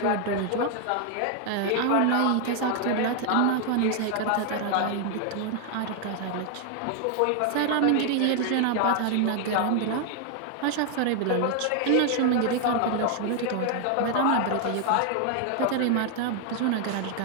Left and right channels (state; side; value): different; both; correlation 0.00